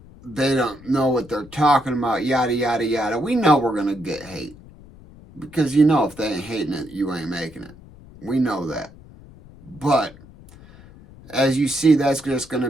they don't know what they're talking about, yada yada yada. We know we're gonna get hate. Because you know if they ain't hating it, you ain't making it. We know that. But as you see, that's just going to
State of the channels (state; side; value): noise; left; rumble, 21 dB below the sound